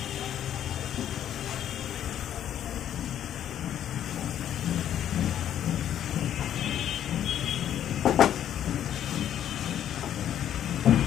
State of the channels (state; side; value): quieter; right; 10.5 dB